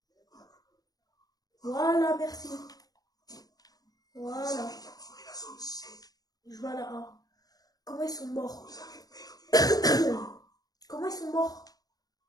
Voilà, merci. Voilà. Je vais à la A. Comment ils sont morts? Comment ils sont morts?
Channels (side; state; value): right; late; 0.18 ms